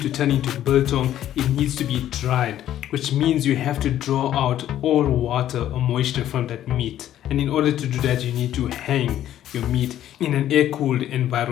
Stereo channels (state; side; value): quieter; right; 12.0 dB